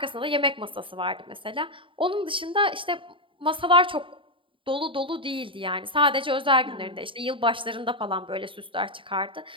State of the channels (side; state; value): left; late; 0.25 ms